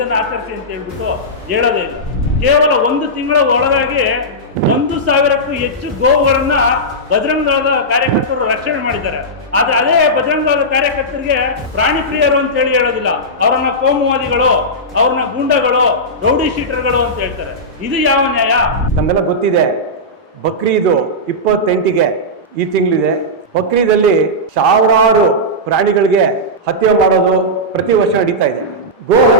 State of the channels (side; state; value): both; normal; correlation -0.12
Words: ಆಚರಿಸಿ ಅಂತ ಹೇಳ್ಬಿಟ್ಟು ಹೇಳೋದೇ ಇಲ್ಲ. ಕೇವಲ ಒಂದು ತಿಂಗಳ ಒಳಗಾಗಿ 1,000ಕ್ಕೂ ಹೆಚ್ಚು ಗೋವುಗಳನ್ನ ಬಜರಂಗ ದಳದ ಕಾರ್ಯಕರ್ತರು ರಕ್ಷಣೆ ಮಾಡಿದ್ದಾರೆ. ಆದ್ರೆ ಅದೇ ಬಜರಂಗ ದಳದ ಕಾರ್ಯಕರ್ತರಿಗೆ ಪ್ರಾಣಿ ಪ್ರಿಯರು ಅಂತ ಹೇಳೋದಿಲ್ಲ, ಅವರನ್ನ ಕೋಮುವಾದಿಗಳು, ಅವ್ರನ್ನ ಗೂಂಡಗಳು, ರೌಡಿ ಶೀಟರ್ಗಳು ಅಂತ ಹೇಳ್ತಾರೆ. ಇದು ಯಾವ ನ್ಯಾಯ? ನಮ್ಗೆಲ್ಲ ಗೊತ್ತಿದೆ, ಬಕ್ರೀದು 28ಗೆ ಈ ತಿಂಗಳಿದೆ. ಬಕ್ರೀದಲ್ಲಿ ಸಾವಿರಾರು ಪ್ರಾಣಿಗಳಿಗೆ ಹತ್ಯೆ ಮಾಡೋದು ಪ್ರತಿ ವರ್ಷ ನಡೀತಾ ಇದೆ. ಗೋ